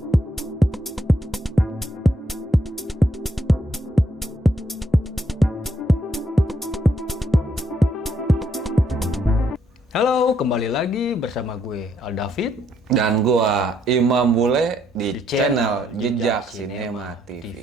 Halo, kembali lagi bersama gue Aldavid Dan gua Imam Bule di Di channel channel Jejak Jejak Sinema Sinema TV. TV.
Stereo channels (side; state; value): both; normal; correlation 0.73